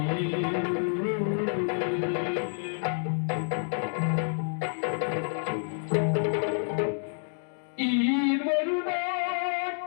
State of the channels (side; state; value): right; silent; digital silence